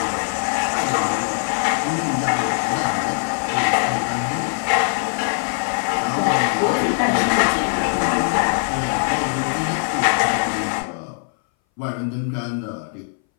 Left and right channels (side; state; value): right; silent; 61 dB below the other